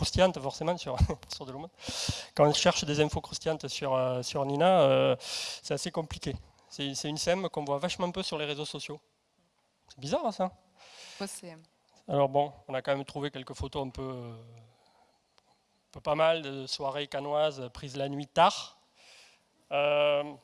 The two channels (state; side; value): identical; both; correlation 1.00